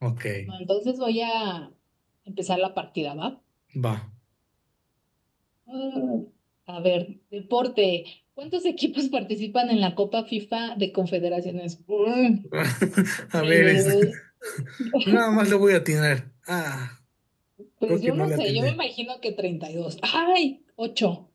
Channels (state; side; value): identical; both; correlation 1.00